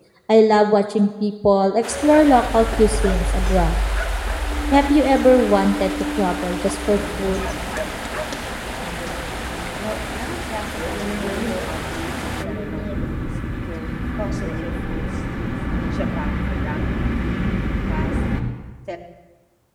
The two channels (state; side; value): identical; both; correlation 1.00